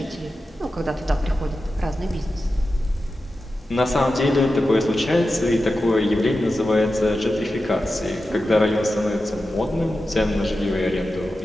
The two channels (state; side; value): normal; both; correlation 0.92